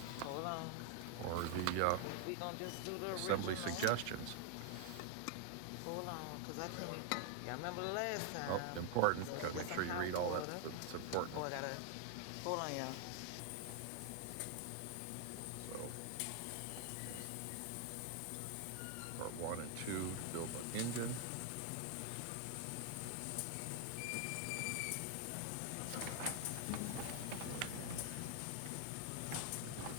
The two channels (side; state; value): both; different; correlation 0.00